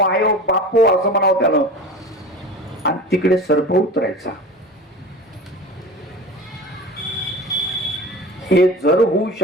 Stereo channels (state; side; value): normal; both; correlation 0.34